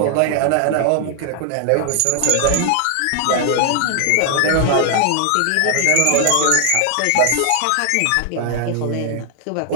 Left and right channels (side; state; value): both; different; correlation 0.00